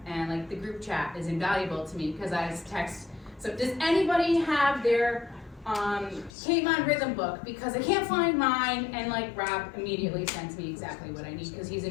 And like the group chat is invaluable to me, because I text, so does anybody have their Canon rhythm book? Because I can't find mine, and like Rob immediately sends me exactly what I need, because he's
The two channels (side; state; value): right; drops out; at 6.3 s